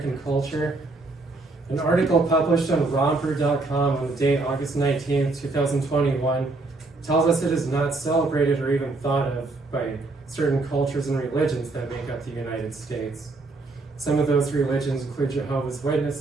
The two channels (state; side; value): quieter; left; 3.3 dB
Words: culture, an article published on Romper.com on the date August 19, 2021, tells us it is not celebrated or even thought of by certain cultures and religions that make up the United States. Some of those religions include Jehovah's